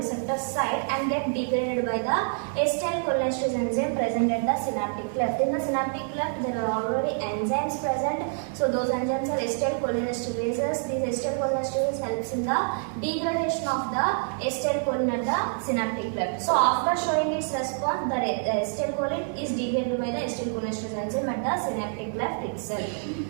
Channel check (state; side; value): silent; left; 60 dB below the other